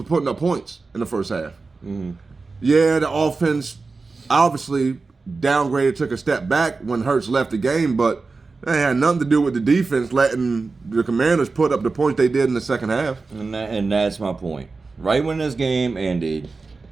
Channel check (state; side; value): quieter; left; 4.1 dB